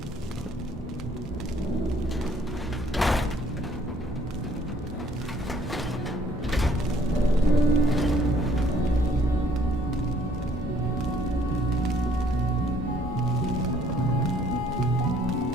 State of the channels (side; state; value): both; normal; correlation 0.62